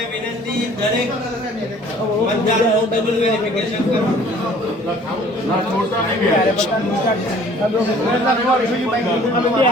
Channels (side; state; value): both; normal; correlation 0.53